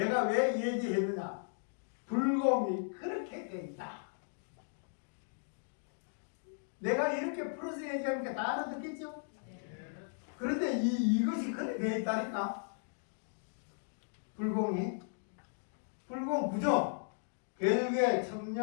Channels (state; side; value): silent; right; digital silence